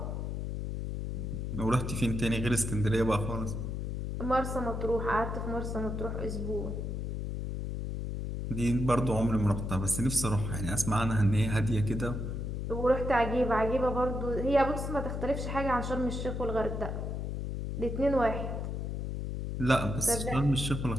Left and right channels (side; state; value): left; noise; hum, 3 dB below the sound